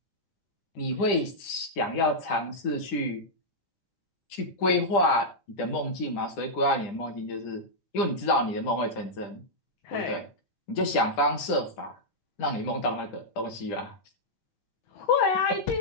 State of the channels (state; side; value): late; right; 10 ms